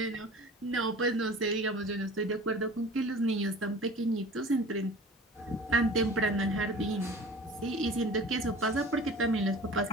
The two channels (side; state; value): both; normal; correlation 0.41